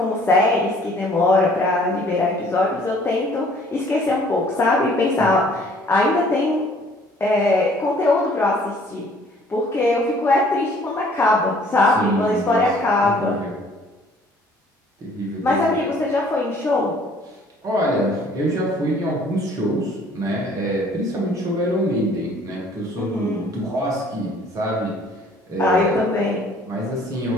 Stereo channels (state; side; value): normal; both; correlation 0.57